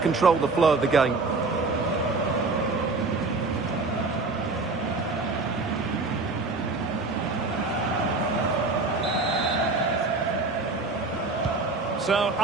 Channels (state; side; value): quieter; left; 3.6 dB